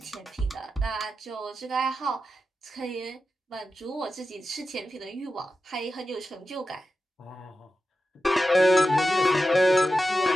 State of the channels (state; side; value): normal; both; correlation 0.92